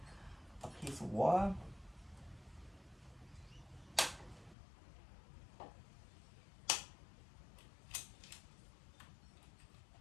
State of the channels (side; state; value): right; drops out; at 4.5 s